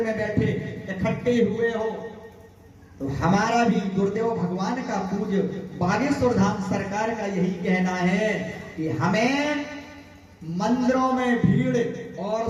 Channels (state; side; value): identical; both; correlation 1.00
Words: में बैठे इकट्ठे हुए हो, तो हमारा भी गुरुदेव भगवान का पूज्य बागेश्वर धाम सरकार का यही कहना है कि हमें मंदिरों में भीड़ और